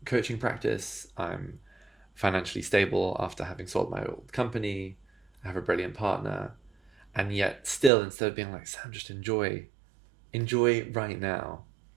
coaching practice. I'm financially stable after having sold my old company. I have a brilliant partner. And yet still, instead of being like, Sam, just enjoy right now,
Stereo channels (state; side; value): drops out; left; at 7.9 s